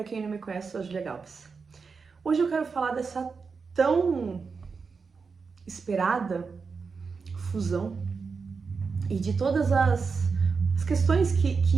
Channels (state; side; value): quieter; left; 5.1 dB